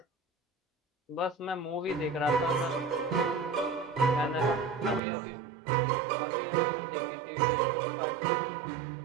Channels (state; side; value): drops out; left; at 5.0 s